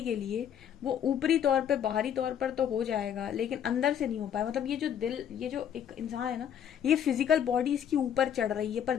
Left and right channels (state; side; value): quieter; right; 9.1 dB